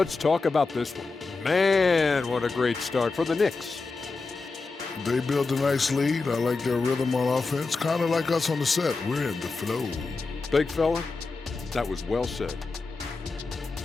talk about this one. Man, what a great start for the Knicks. They built a nice lead. I like their rhythm on offense. Kind of like us on the set. We're in the flow. Big fella, that was well said.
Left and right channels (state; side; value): quieter; right; 4.0 dB